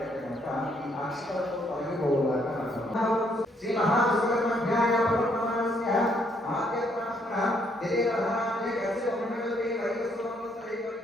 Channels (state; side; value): normal; both; correlation 0.70